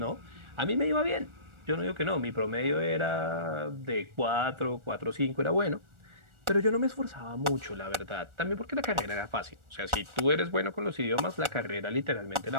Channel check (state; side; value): late; left; 1.4 ms